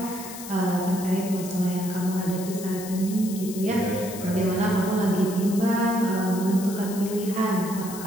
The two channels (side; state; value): left; noise; hiss, 12 dB below the sound